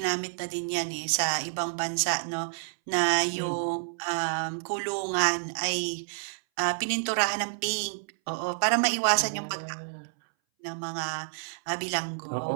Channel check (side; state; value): left; silent; 59 dB below the other